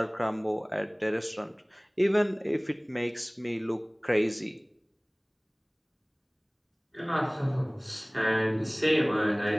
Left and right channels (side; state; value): both; identical; correlation 1.00